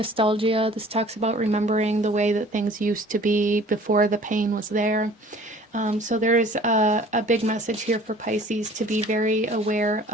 This talks about remembering the way that things used to be before the pain was there. So there's a big message here for Pisces to be very aware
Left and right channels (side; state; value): both; normal; correlation 0.50